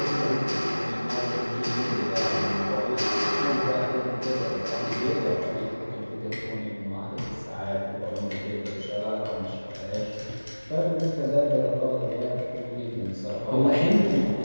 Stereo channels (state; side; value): inverted; both; correlation -1.00